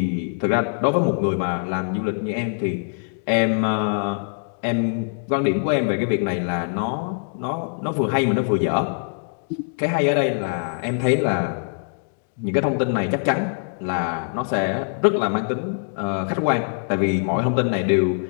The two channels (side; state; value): right; silent; digital silence